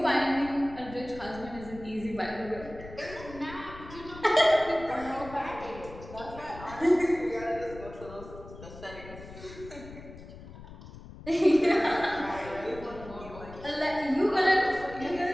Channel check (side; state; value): left; noise; rumble, 15 dB below the sound